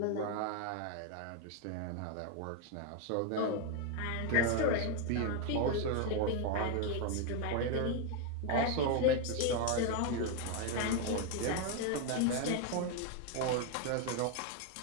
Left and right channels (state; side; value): different; both; correlation 0.01